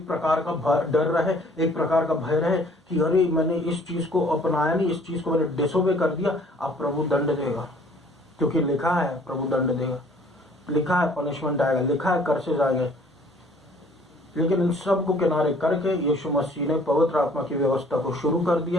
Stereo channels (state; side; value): normal; both; correlation 0.56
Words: प्रकार का डर रहे, एक प्रकार का भय रहे कि अरे मैंने इस चीज को अपनाया नहीं, इस चीज को मैंने डिसोबे कर दिया, अब प्रभु दंड देगा, क्योंकि लिखा है प्रभु दंड देगा, लिखा है पनिशमेंट आएगा, लिखा है कर्सेज आएंगे। लेकिन इन सब को किनारे करके यीशु मसीह ने पवित्र आत्मा की व्यवस्था को शुरू कर